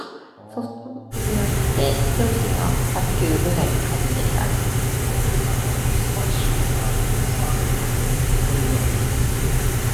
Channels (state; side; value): identical; both; correlation 1.00